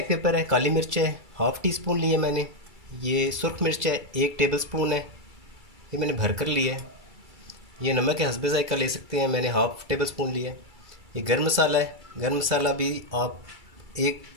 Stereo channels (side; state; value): left; late; 2.3 ms